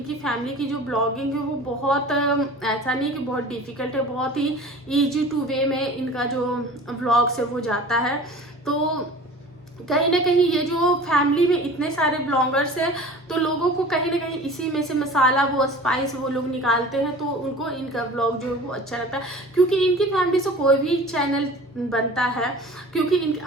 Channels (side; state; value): both; normal; correlation 0.41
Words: फैमिली की जो ब्लॉगिंग है वो बहुत ऐसा नहीं कि बहुत डिफिकल्ट है, बहुत ही ईजी टू वे में इनका जो ब्लॉग्स है वो जाता है। तो कहीं ना कहीं ये जो फैमिली में इतने सारे ब्लॉगर्स हैं तो लोगों को कहीं ना कहीं इसी में से मसाला, वो स्पाइस वो लोग निकालते हैं, तो उनको इनका ब्लॉग जो है वो अच्छा लगता है। क्योंकि इनकी फैमिली से कोई भी चैनल बनता है, क्योंकि